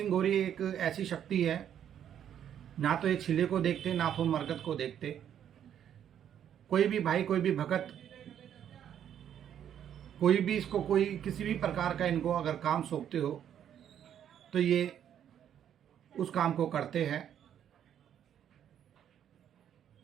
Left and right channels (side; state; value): left; quieter; 9.6 dB